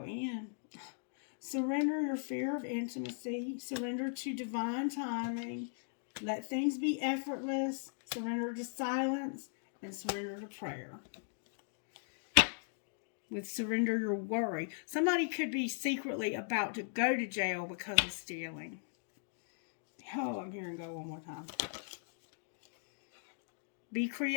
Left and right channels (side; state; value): right; silent; digital silence